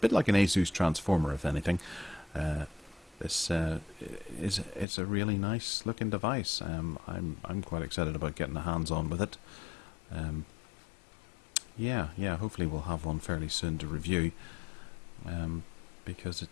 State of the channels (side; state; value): right; drops out; at 4.9 s